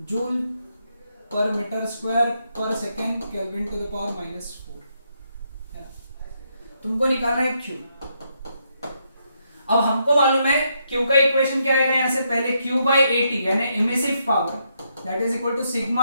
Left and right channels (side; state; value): both; inverted; correlation -0.78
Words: joule पर metre square per second kelvin to the power -4 है। तुमको निकालना है क्यू। अब हमको मालूम है क्यू का इक्वेशन क्या आएगा, यहां से पहले क्यू बाई एटी यानी emissive power that is equal to